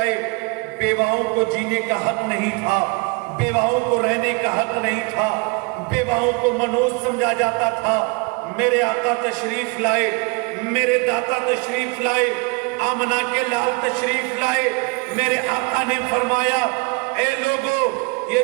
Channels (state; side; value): quieter; left; 29.4 dB